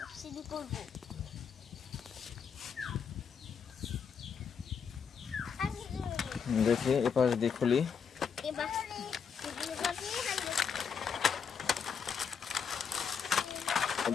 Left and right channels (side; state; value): right; quieter; 6.6 dB